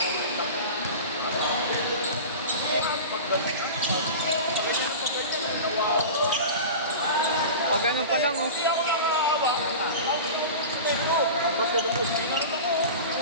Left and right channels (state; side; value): inverted; both; correlation -0.31